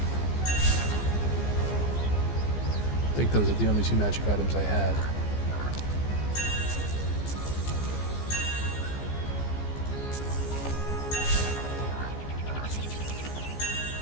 I think those are the only two magic items I had.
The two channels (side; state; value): right; late; 15 ms